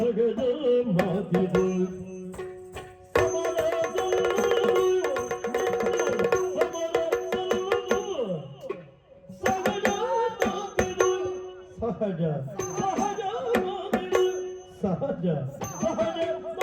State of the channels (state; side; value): identical; both; correlation 1.00